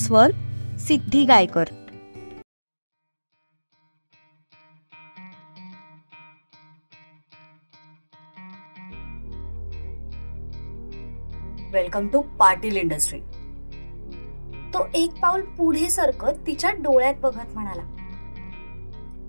Siddhi Gaykar. Welcome to Patil industry. तो एक पाऊल पुढे सरकत तिच्या डोळ्यात बघत म्हणाला.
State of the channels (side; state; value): both; inverted; correlation -1.00